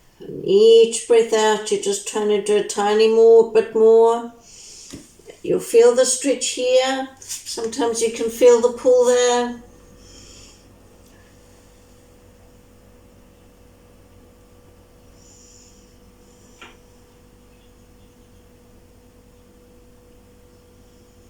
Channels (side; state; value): both; identical; correlation 1.00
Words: And each breath out, you're just trying to do a tiny bit more. You'll feel the stretch here. Sometimes you can feel the pull there.